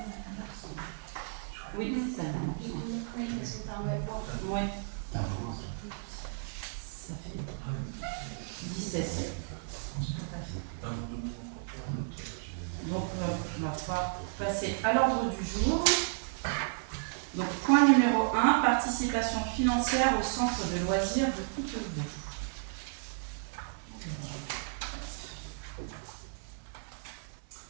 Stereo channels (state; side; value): silent; left; 56 dB below the other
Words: Oui, c'est ça. Oui. Ça fait 17. passer à l'ordre du jour. Donc, point numéro 1, participation financière au centre de loisirs de Coutevaux.